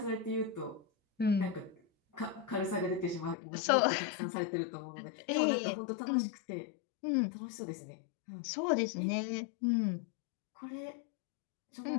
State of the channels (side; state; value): right; drops out; at 3.4 s